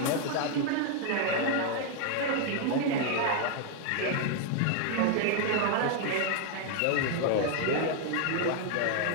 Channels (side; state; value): both; different; correlation 0.00